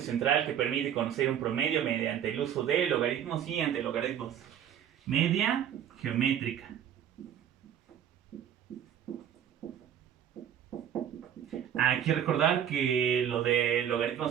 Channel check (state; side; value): quieter; left; 9.6 dB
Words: que permite conocer un promedio mediante el uso de logaritmos y antilogaritmos. Media geométrica. Hay que recordar que lo de